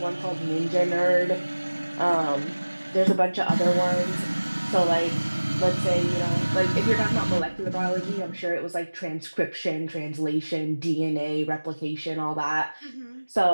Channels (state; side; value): inverted; both; correlation -1.00